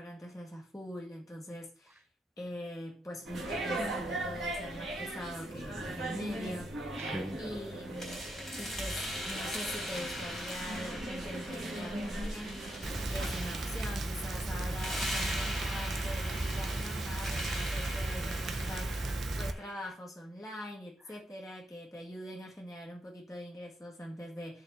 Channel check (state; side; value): normal; both; correlation 0.81